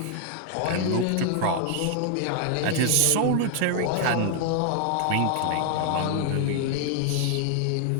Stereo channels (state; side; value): different; both; correlation 0.00